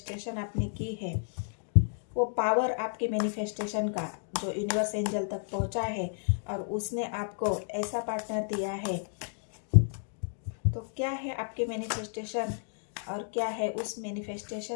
आपने की है? वो पावर आपके मैनिफेस्टेशन का जो यूनिवर्स एंजल तक पहुंचा है और उसने आपको ऐसा पार्टनर दिया है, तो क्या है आपके मैनिफेस्टेशन और क्या है उस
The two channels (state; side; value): silent; right; digital silence